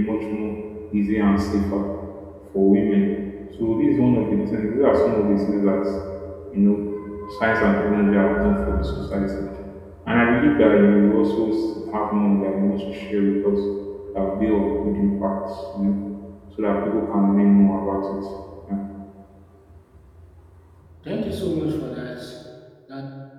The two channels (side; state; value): both; identical; correlation 1.00